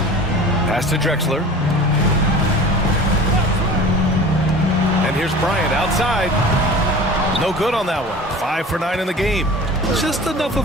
Pass to Drexler. And here's Bryant outside. No good on that one. 5 for 9 in the game. Just enough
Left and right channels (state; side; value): normal; both; correlation 0.39